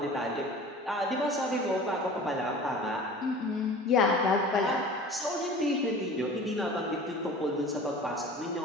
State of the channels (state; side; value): normal; both; correlation 0.41